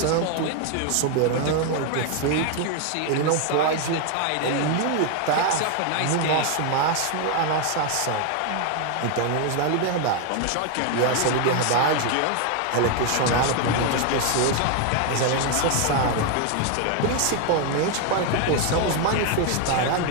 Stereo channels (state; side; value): different; both; correlation 0.01